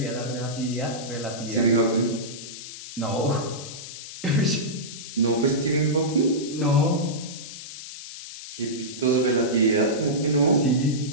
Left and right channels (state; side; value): noise; left; hiss, 12 dB below the sound